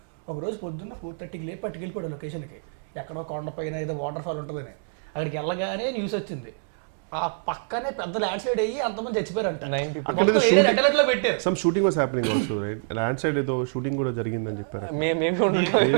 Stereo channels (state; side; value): silent; left; digital silence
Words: ఒక రోజు పొద్దున్న 4:30కి లేపి పట్టుకెళ్ళిపోయాడు లొకేషన్కి, ఎక్కడో కొండ పైన ఏదో వాటర్ ఫాల్ ఉంటుందని. అక్కడికి వెళ్ళగానే న్యూస్ వచ్చింది, ఆ పక్కనే పెద్ద ల్యాండ్ స్లైడ్ అయ్యి అంతమంది చచ్చిపోయారంట. పెట్టారు. Some shooting was happening also, right? Land slide ఏదో షూటింగ్ కూడా జరిగిందని చెప్పారు. మేమే